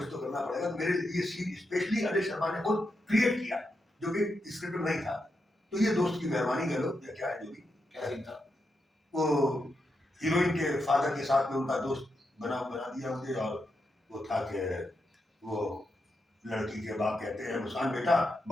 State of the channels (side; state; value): both; normal; correlation 0.85